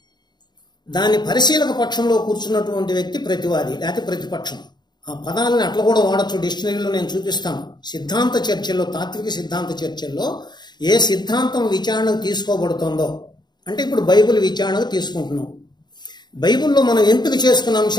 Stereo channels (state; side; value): late; right; 0.21 ms